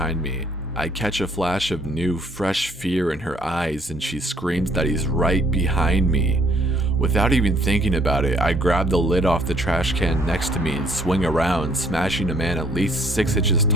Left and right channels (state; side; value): normal; both; correlation 0.63